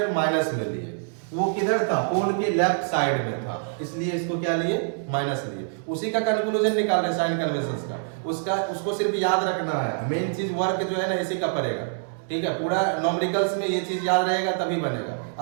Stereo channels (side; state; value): left; silent; 61 dB below the other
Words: minus में लिए, वो किधर था, पोल के लेफ्ट साइड में था, इसलिए इसको क्या लिए, माइनस लिए। उसी का कंक्लूजन निकाल रहे साइन कन्वेंशंस का, उसको सिर्फ याद रखना है। मेन चीज वर्क जो है ना इसी का पड़ेगा। ठीक है, पूरा न्यूमेरिकल्स में ये चीज याद रहेगा तभी बनेगा,